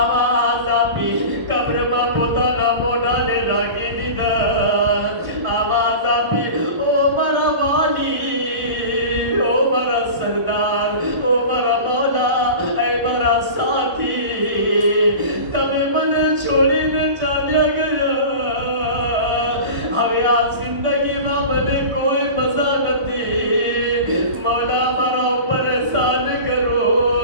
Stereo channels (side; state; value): left; late; 1.4 ms